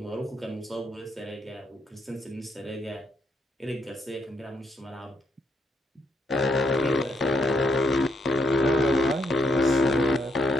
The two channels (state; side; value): normal; both; correlation 0.77